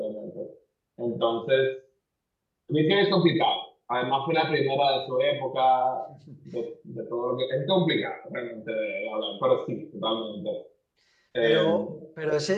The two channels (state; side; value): identical; both; correlation 1.00